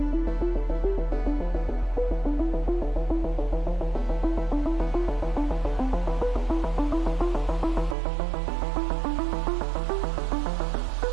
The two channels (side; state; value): left; drops out; at 8.0 s